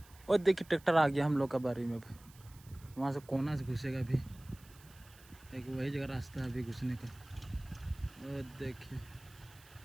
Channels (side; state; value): right; noise; hiss, 24 dB below the sound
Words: और देखिए ट्रैक्टर आ गया हम लोग का बारी में। वहाँ से कोना से घुसेगा अभी, एक वही जगह रास्ता है अभी घुसने का। और देखिए